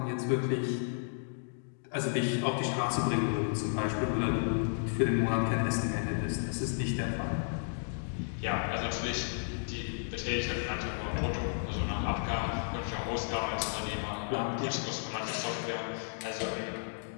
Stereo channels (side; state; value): right; silent; digital silence